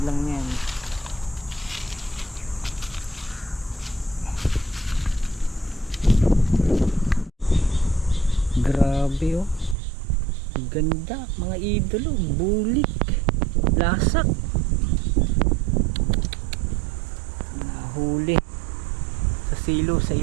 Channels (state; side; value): drops out; left; at 9.8 s